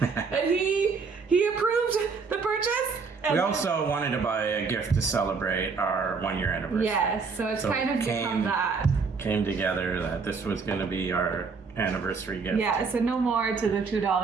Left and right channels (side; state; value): left; quieter; 4.9 dB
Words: And he approved the purchase. We also wanted to buy a gift to celebrate our 1-year anniversary. Yes, so it's kind of become that. Came together that this was going to be our anniversary gift. Yeah, so no more to the